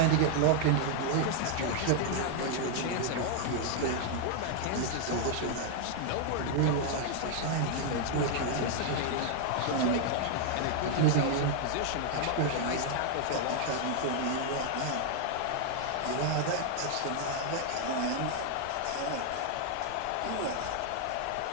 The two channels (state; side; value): different; both; correlation 0.00